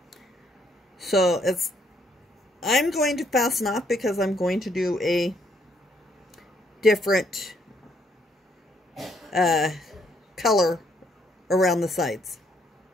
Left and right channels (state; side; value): normal; both; correlation 0.70